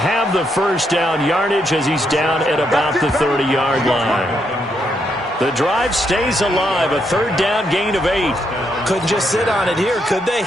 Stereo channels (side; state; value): both; normal; correlation 0.77